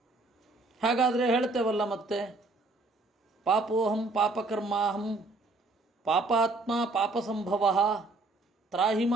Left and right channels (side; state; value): left; quieter; 3.2 dB